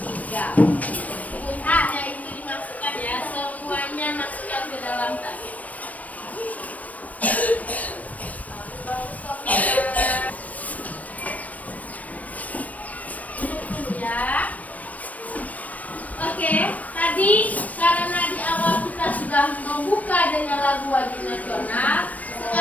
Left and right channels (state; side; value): late; right; 0.071 ms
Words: Punanya itu dimasukkan ya, semuanya masukkan ke dalam tas. Oke, tadi karena di awal kita sudah membuka dengan lagu wajib nasional,